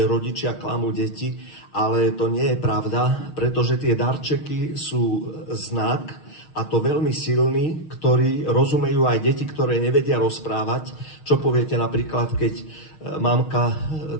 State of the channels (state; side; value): late; right; 6.4 ms